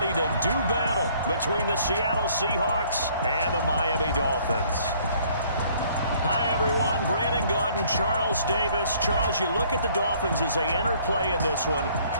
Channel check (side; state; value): both; inverted; correlation -0.60